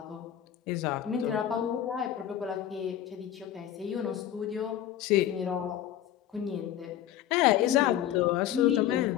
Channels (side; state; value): right; quieter; 11.1 dB